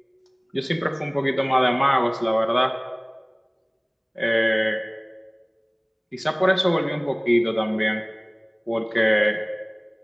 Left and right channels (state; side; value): identical; both; correlation 1.00